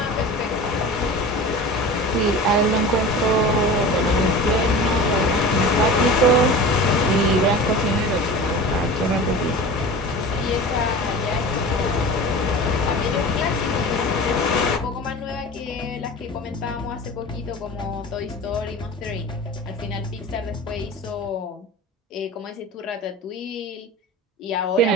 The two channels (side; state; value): both; normal; correlation 0.35